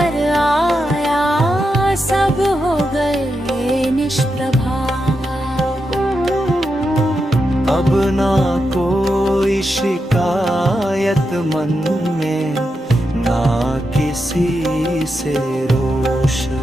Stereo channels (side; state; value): both; normal; correlation 0.86